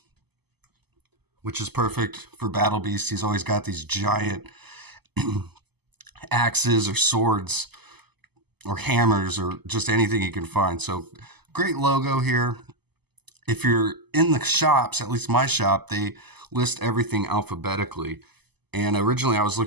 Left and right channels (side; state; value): left; late; 0.99 ms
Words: which is perfect for Battle Beast. He's always got these giant axes or swords or hammers or just anything he can find. So great logo here. If you're in the shops, at least my shop, they list everything alphabetically. And originally I was